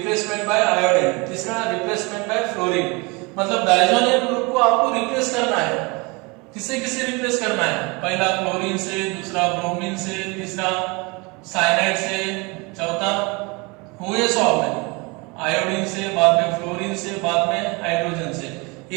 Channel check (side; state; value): left; quieter; 27.7 dB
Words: बाय आयोडीन, तीसरा रिप्लेसमेंट बाय फ्लोरीन। मतलब डाइजोनियम ग्रुप को आपको रिप्लेस करना है, किससे रिप्लेस करना है, पहला क्लोरीन से, दूसरा ब्रोमीन से, तीसरा साइनाइड से, चौथा हुए 100 में आयोडीन से, बाद में फ्लोरीन से, बाद में हाइड्रोजन से,